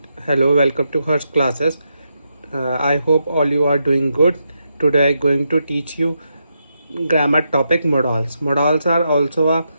to Hers classes. I hope all you are doing good. Today I'm going to teach you grammar topic modals. Modals are also a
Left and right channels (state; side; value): inverted; both; correlation -0.83